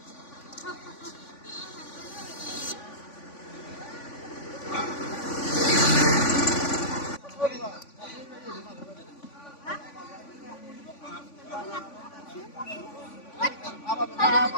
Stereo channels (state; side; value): late; right; 3.5 ms